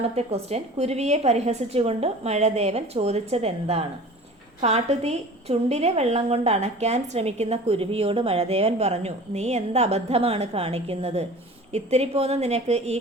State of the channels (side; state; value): both; normal; correlation 0.41